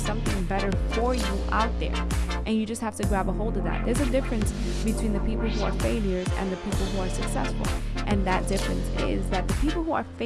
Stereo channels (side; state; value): both; identical; correlation 1.00